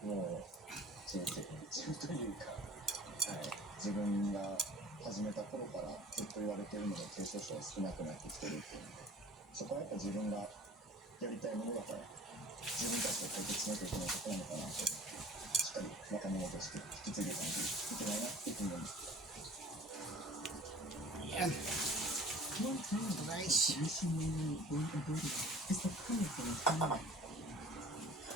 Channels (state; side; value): normal; both; correlation 0.46